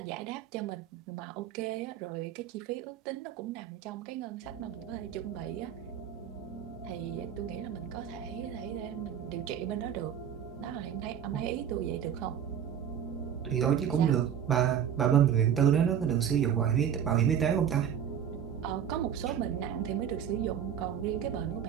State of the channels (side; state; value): left; quieter; 9.0 dB